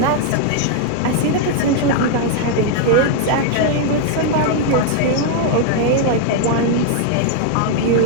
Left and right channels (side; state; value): both; different; correlation 0.00